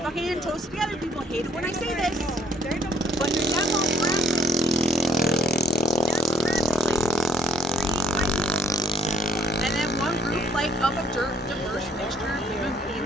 fucking TOSA Together people hate it when I say this, but they're of a diverse mixture of human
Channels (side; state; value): both; normal; correlation 0.63